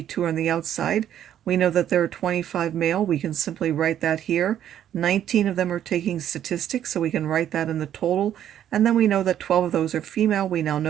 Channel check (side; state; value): left; quieter; 10.7 dB